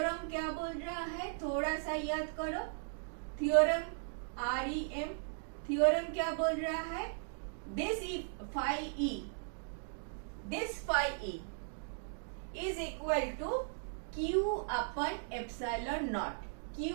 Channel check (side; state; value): left; silent; digital silence